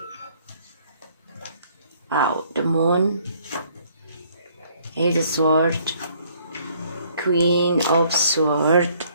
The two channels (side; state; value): both; inverted; correlation -0.63